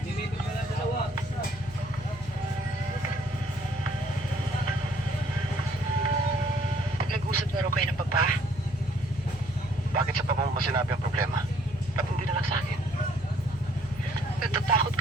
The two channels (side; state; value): left; noise; hum, 17 dB below the sound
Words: Nag-usap na raw kayo ng Papa? Bakit sa pamang masinabi ang problema? Ba't hindi na lang sa akin? Natatakot